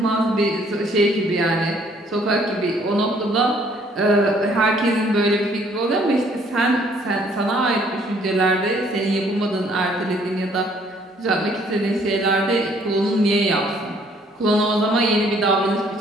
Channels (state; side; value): normal; both; correlation 0.62